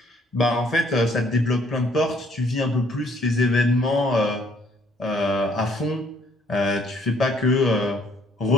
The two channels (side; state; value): both; normal; correlation 0.64